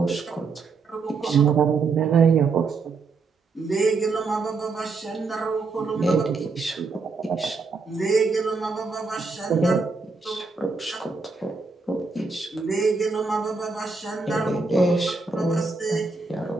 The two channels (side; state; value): left; quieter; 4.2 dB